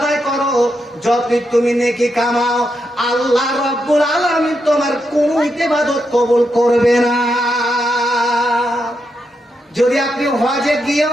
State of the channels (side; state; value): both; normal; correlation 0.83